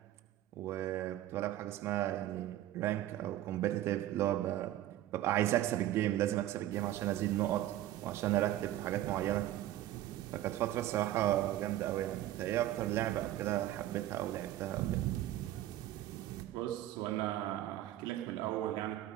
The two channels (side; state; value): left; quieter; 13.7 dB